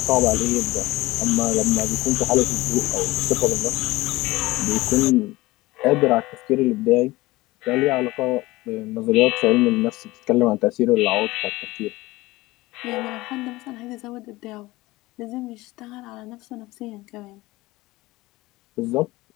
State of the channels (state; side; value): quieter; right; 19.8 dB